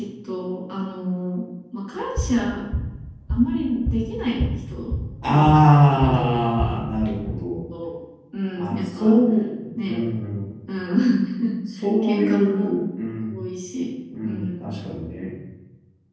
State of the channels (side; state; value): both; identical; correlation 1.00